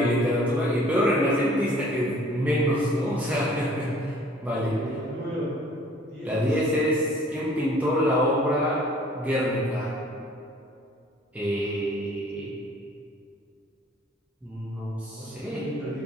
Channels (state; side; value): normal; both; correlation 0.54